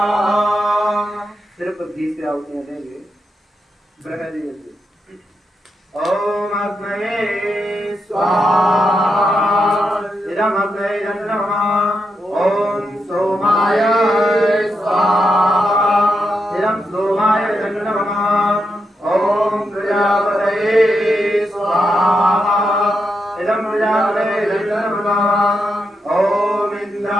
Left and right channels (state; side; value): normal; both; correlation 0.84